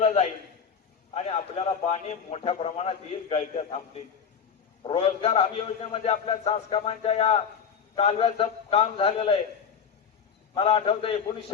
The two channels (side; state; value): right; quieter; 6.9 dB